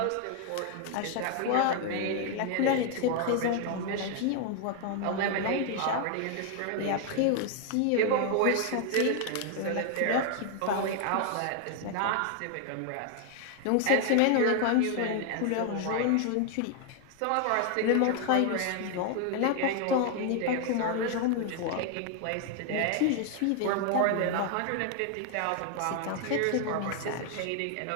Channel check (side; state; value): both; different; correlation 0.00